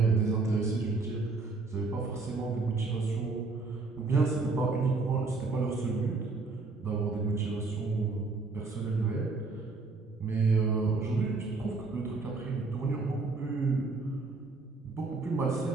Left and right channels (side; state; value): left; quieter; 3.8 dB